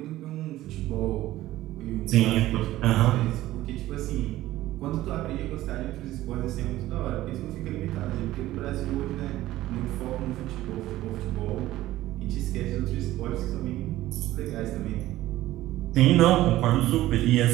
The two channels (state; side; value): quieter; left; 15.5 dB